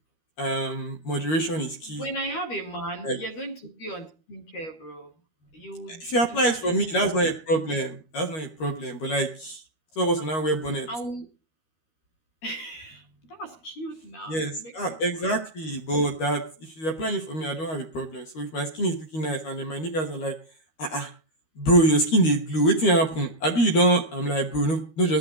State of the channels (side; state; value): right; late; 13 ms